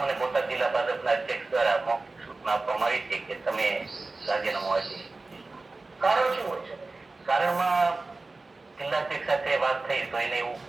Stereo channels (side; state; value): left; quieter; 3.4 dB